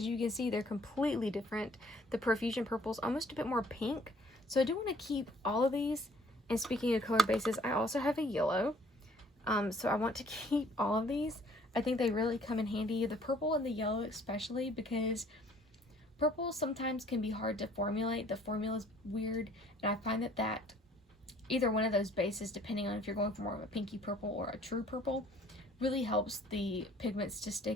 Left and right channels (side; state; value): both; normal; correlation 0.58